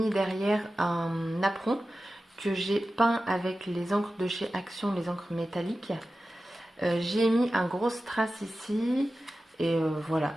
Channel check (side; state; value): both; normal; correlation 0.94